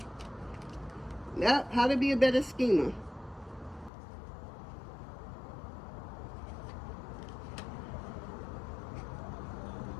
Yep, how to be a better schemer.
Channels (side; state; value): right; drops out; at 3.9 s